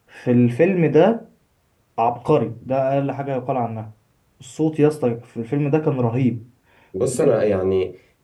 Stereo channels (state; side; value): identical; both; correlation 1.00